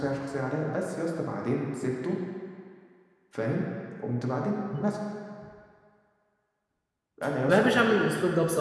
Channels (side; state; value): both; identical; correlation 1.00